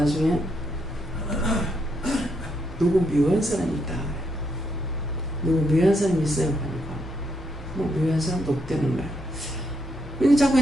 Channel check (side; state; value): both; normal; correlation 0.78